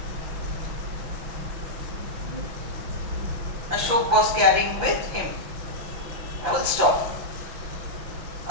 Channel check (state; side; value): late; left; 5.9 ms